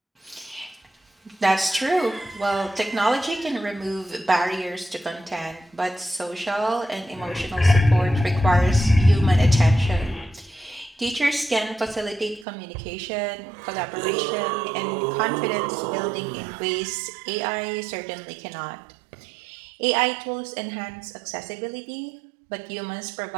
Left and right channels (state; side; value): drops out; left; at 12.5 s